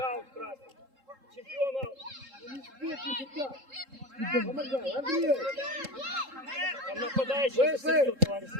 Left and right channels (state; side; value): late; left; 3.7 ms